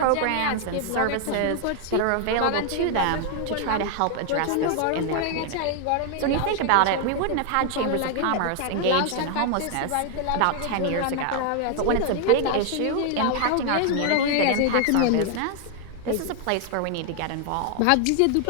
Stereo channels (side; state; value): both; different; correlation 0.00